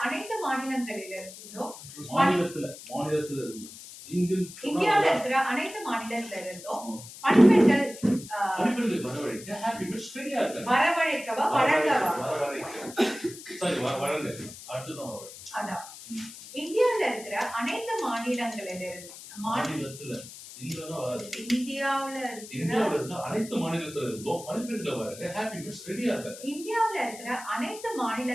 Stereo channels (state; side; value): noise; left; hiss, 15 dB below the sound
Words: அனைத்து மாநிலங்களிலிருந்தும் இந்தியாவில் இருக்கிற அனைத்து மாநிலத்திலிருந்தும் பணிப்பெண்கள் வரவழைக்க ஹாப்பி மீட்ஸ் ரெடியா இருக்காங்க. வரவழைக்கவா வழங்கவா? வழங்க. அடுத்ததான் அதான் இந்தியாவில் இருக்கிற அனைத்து மாநிலங்களிலிருந்து அனைத்து மாநிலத்துல இருந்தும் பணிப்பெண்களை வழங்க ஹாப்பி மீட்ஸ் ரெடியா இருக்காங்க. இந்தியாவில் இருக்கிற அனைத்து